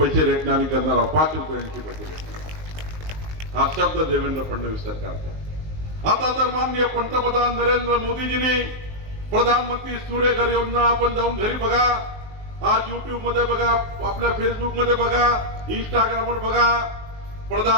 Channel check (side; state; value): left; late; 19 ms